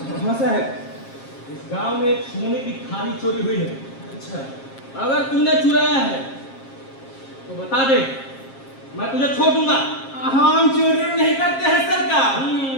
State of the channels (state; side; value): late; right; 7.4 ms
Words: हाँ साहब, इस गांव में एक सोने की थाली चोरी हुई है। अच्छा, अगर तूने चुराया है तो बता दे, मैं तुझे छोड़ दूंगा। हम चोरी नहीं करते हैं सरकार।